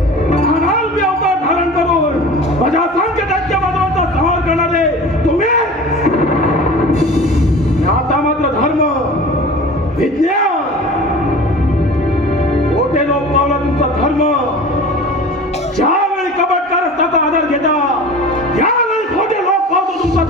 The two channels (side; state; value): both; normal; correlation 0.39